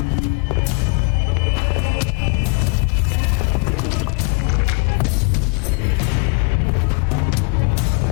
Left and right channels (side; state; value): right; quieter; 34.9 dB